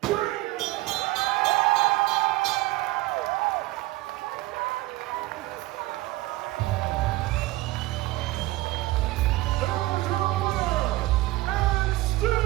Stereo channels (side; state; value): left; quieter; 18.7 dB